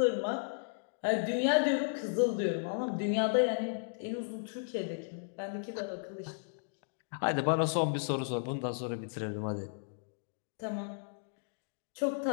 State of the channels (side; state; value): right; silent; digital silence